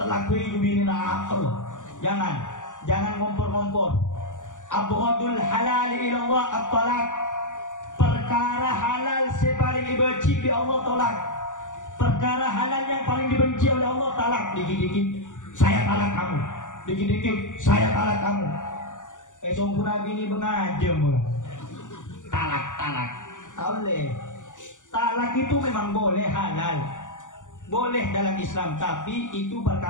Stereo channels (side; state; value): right; late; 0.86 ms